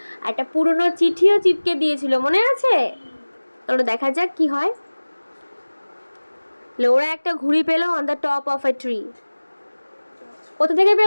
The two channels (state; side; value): inverted; both; correlation -1.00